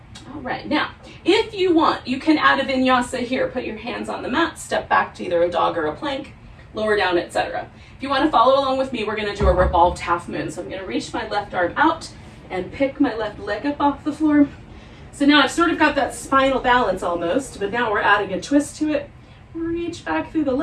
All right, now, if you want, you can add a vinyasa here. Put your hands on the mat, step back to either a dog or a plank, lower down, etc. If you want to follow along with me, we're going to do a revolved half moon. So I'm going to reach my left arm out and pick my left leg up off the floor. So now I've sort of got that spinal balance almost, but now we're adding a twist to it. Reach back through the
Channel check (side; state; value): both; identical; correlation 1.00